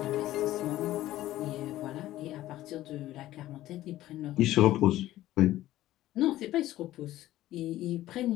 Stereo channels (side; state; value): right; quieter; 14.8 dB